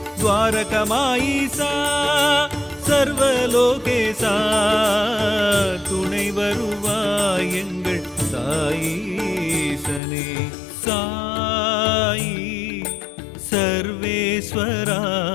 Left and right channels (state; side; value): drops out; right; at 10.0 s